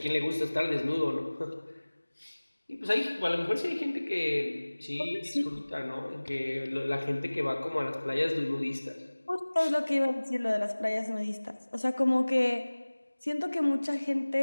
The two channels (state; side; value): inverted; both; correlation -1.00